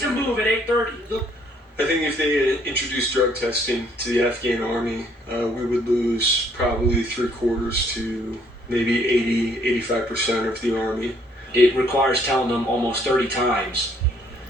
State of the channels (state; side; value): normal; both; correlation 0.65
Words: move at 8:30. I think if they introduced drug testing to the Afghan army, we would lose probably 3/4 to maybe 80-85% of the army. It requires telling them almost 30 times,